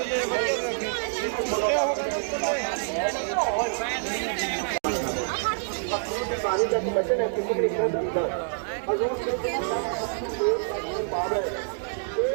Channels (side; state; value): left; silent; digital silence